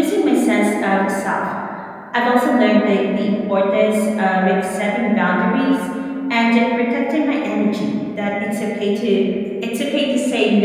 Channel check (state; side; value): identical; both; correlation 1.00